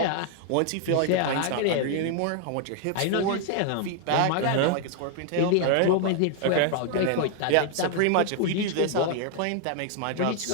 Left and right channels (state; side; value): different; both; correlation 0.00